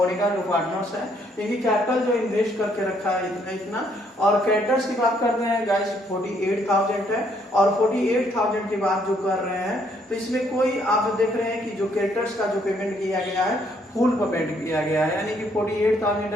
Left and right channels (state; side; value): normal; both; correlation 0.69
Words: जो पार्टनर्स हैं, इनकी कैपिटल जो इन्वेस्ट करके रखा है इतना इतना, और क्रेडिटर्स की बात करते हैं गाइस 48,000 है, और 48,000 की बात जो कर रहे हैं तो इसमें कोई आप देख रहे हैं कि जो क्रेडिटर्स का जो पेमेंट किया गया है फुल पेमेंट किया गया है, यानी कि 48,000